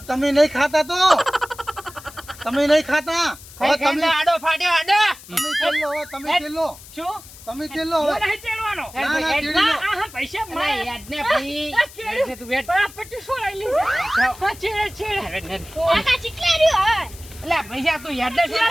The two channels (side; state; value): left; noise; hiss, 19 dB below the sound